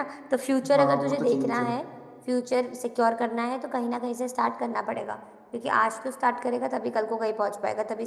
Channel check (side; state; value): both; identical; correlation 1.00